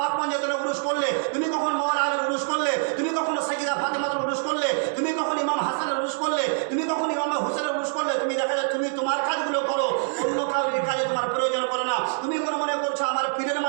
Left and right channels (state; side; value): silent; left; digital silence